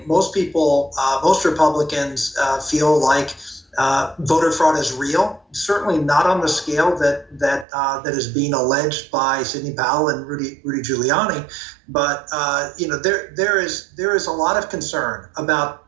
most people, most Republicans feel like voter fraud is real. Certainly not on the scale that is being alleged by Sidney Powell and Rudy Giuliani, but there is a lot of concern about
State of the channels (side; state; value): left; drops out; at 7.7 s